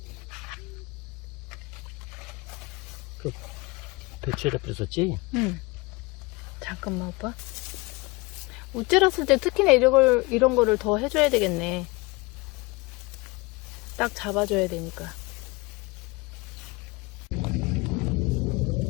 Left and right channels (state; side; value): quieter; right; 24.9 dB